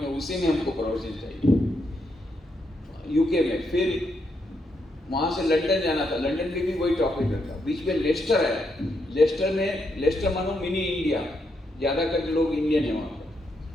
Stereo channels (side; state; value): both; normal; correlation 0.79